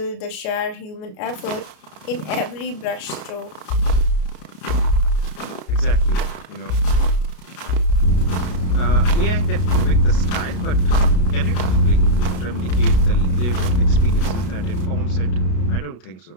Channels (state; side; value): late; right; 33 ms